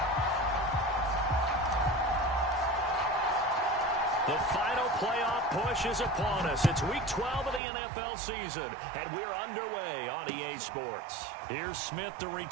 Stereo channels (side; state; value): left; drops out; at 7.6 s